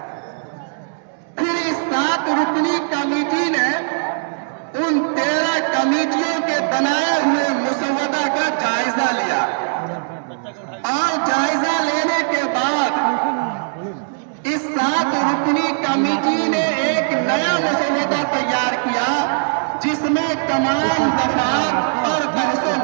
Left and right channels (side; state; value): left; silent; digital silence